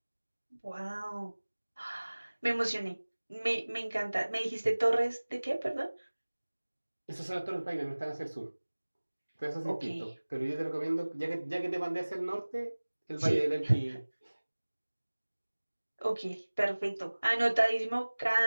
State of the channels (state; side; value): inverted; both; correlation -1.00